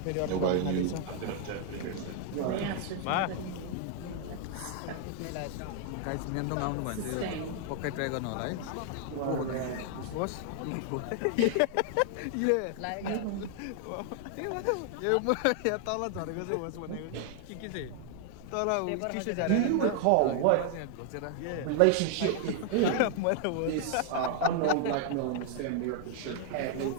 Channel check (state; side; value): different; both; correlation 0.00